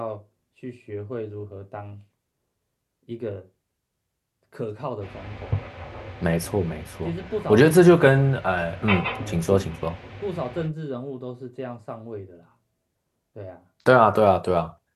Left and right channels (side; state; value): both; identical; correlation 1.00